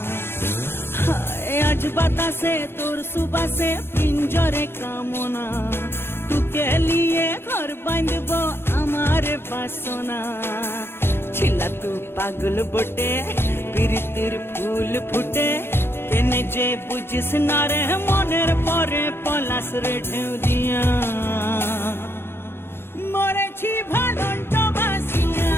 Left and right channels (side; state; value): right; late; 0.11 ms